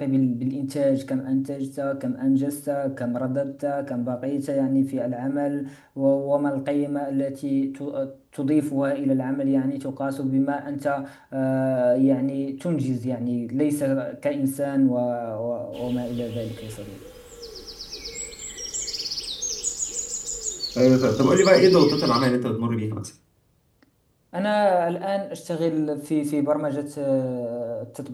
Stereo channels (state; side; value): identical; both; correlation 1.00